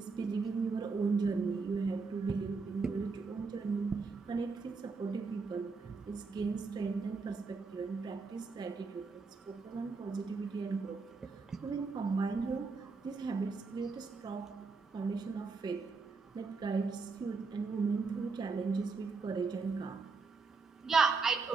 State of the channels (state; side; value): quieter; left; 4.4 dB